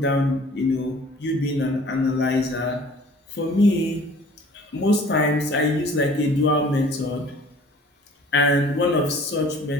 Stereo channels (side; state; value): both; normal; correlation 0.50